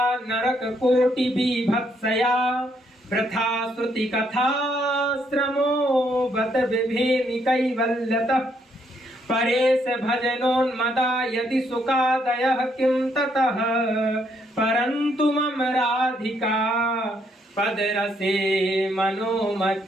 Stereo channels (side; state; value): both; normal; correlation 0.73